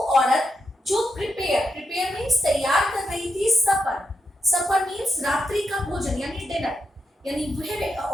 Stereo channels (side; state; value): both; normal; correlation 0.84